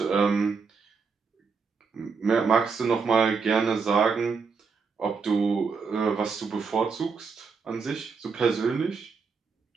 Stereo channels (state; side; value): quieter; left; 5.2 dB